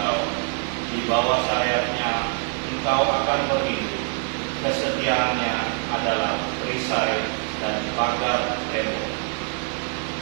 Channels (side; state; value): left; quieter; 38.8 dB